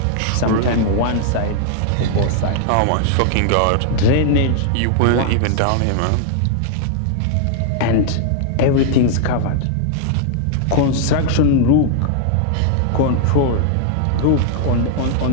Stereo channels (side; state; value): both; different; correlation -0.01